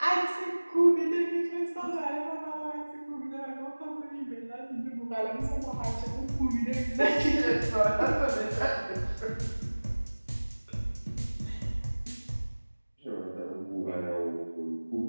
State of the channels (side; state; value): both; inverted; correlation -1.00